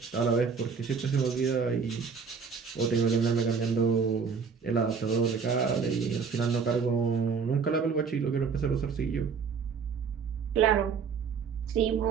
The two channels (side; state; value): left; quieter; 5.8 dB